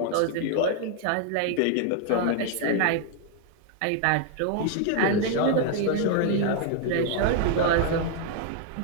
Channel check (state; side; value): different; both; correlation 0.00